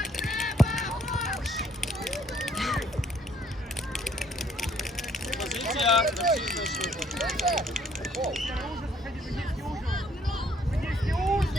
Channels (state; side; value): normal; both; correlation 0.65